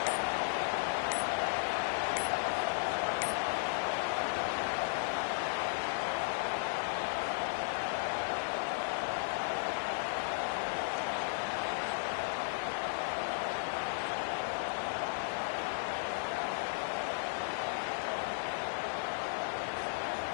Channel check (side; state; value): right; silent; digital silence